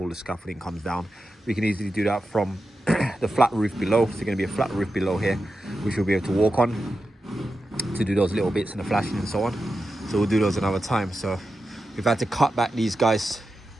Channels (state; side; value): normal; both; correlation 0.90